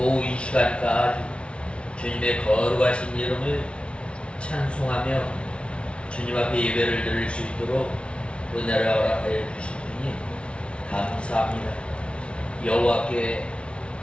이 시간까지 주님의 거룩하신 이름을 찬송하며 주님 앞에 예배를 드릴 수 있도록 은혜를 허락하여 주신 분이 감사합니다. 여호와께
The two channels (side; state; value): right; late; 0.059 ms